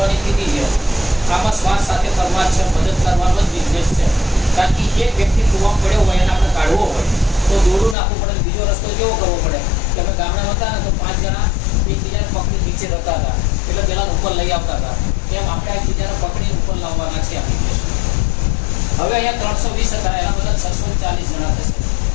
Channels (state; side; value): drops out; right; at 8.0 s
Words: કીધી છે. આમાં શ્વાસ સાથે કરવા છે, મદદ કરવાનો જ બિઝનેસ છે. કારણ કે એક વ્યક્તિ કૂવામાં પડ્યો હોય એને આપણે કાઢવો હોય તો દોડું નાખવું પડે. બીજો રસ્તો કેવો કરવો પડે કે અમે ગામડા હતા ને તો 5 જણા એકબીજાને પકડી નીચે રહેતા હતા એટલે પેલા ઉપર લઈ આવતા હતા. તેમ આપણે એકબીજાને પકડીને ઉપર લાવવાના છે એપ્લિકેશન. હવે અહીંયા 320 હતા, એના બધા 640 જણા થશે,